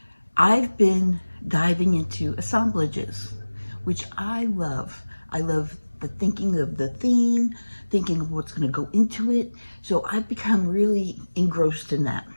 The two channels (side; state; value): both; inverted; correlation -1.00